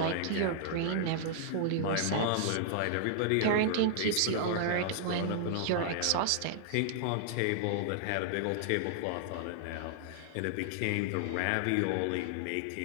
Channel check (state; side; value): different; both; correlation -0.01